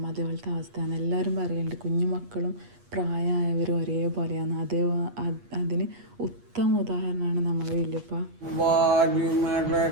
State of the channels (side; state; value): left; late; 8.4 ms